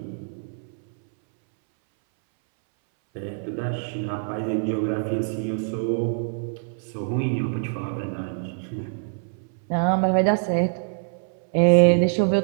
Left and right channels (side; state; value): left; silent; 61 dB below the other